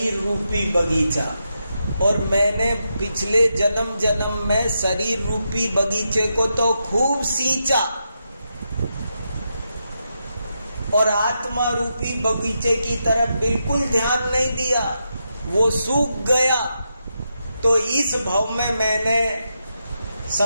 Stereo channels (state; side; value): inverted; both; correlation -0.84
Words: रूपी बगीचा। और मैंने पिछले जन्म में शरीर रूपी बगीचे को तो खूब सींचा और आत्मा रूपी बगीचे की तरफ बिल्कुल ध्यान नहीं दिया, वो सूख गया। तो इस भव में मैंने